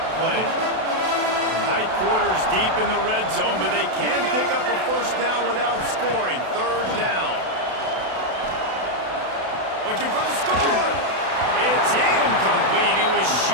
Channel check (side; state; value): left; late; 32 ms